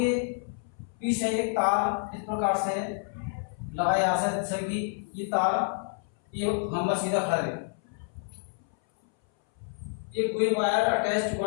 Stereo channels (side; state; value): right; silent; 59 dB below the other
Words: पीछे एक तार इस प्रकार से लगाया जा सकता है जैसे कि ये तार ये हम सीधा खड़ा है। ये कोई wire attached